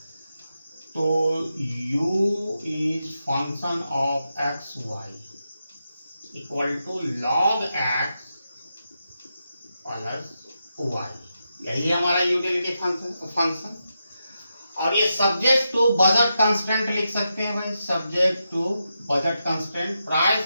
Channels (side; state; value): both; inverted; correlation -0.87